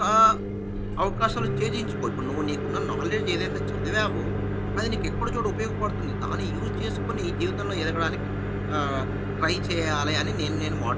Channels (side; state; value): both; identical; correlation 1.00